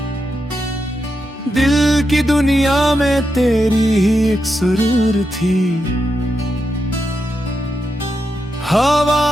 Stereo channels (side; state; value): both; normal; correlation 0.86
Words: दिल की दुनिया में तेरी ही एक सुरूर थी।